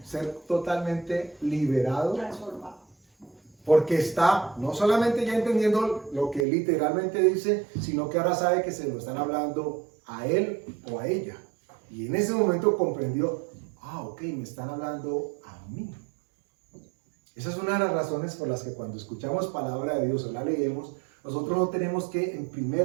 ser totalmente liberado, porque está no solamente ya entendiendo lo que literalmente dice, sino que ahora sabe que se lo están hablando a él o a ella. Y en ese momento comprendió, ok, me están hablando a mí. Esa es una de las razones por las que cuando escuchamos palabra de Dios o la leemos, nosotros no tenemos que en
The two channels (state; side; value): drops out; left; at 6.5 s